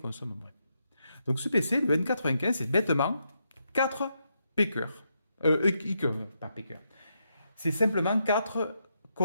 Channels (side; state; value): both; inverted; correlation -0.81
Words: moins. Donc ce PC, le N95, c'est bêtement 4 P-cœurs. Pas P-cœurs. C'est simplement 4